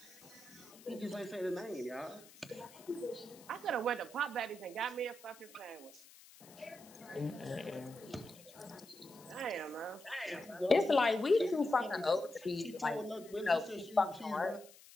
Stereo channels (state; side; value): noise; left; hiss, 21 dB below the sound